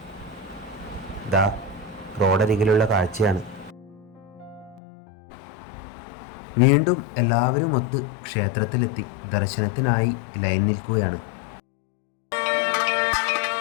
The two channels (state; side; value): drops out; right; at 4.8 s